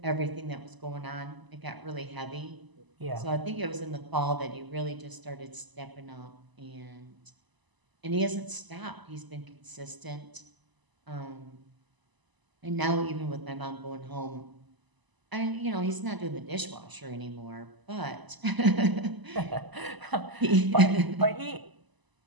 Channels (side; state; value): left; late; 1.0 ms